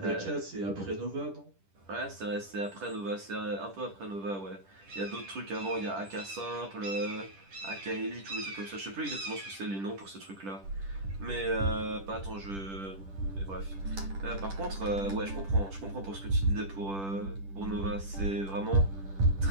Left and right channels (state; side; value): late; left; 10 ms